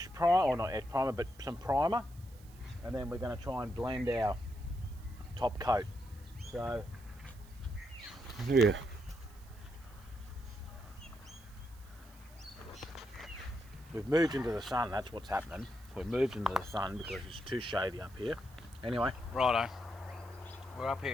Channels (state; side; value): noise; right; hiss, 25 dB below the sound